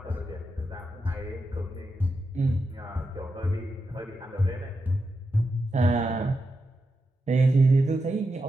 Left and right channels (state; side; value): normal; both; correlation 0.87